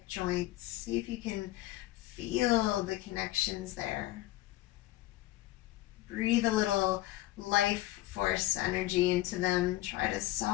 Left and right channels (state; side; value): quieter; right; 16.4 dB